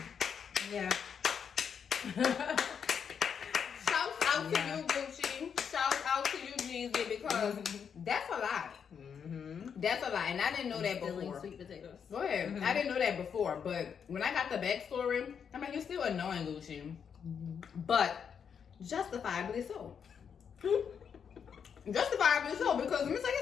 Yeah. Shout out to you, Gucci. Shout out to you, Jeezy, because that's a lot. That's a lot, and I didn't know that Stealing before. sweet potatoes. Go ahead. I didn't know that before, but when I got the backstory, I mean, you're still annoying, Gucci, but justifiably so. Justifiably so, because let me tell you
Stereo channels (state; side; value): quieter; right; 7.2 dB